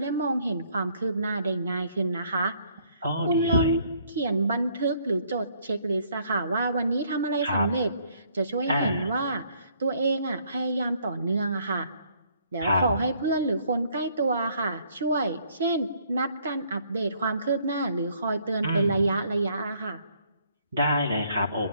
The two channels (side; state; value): both; inverted; correlation -0.65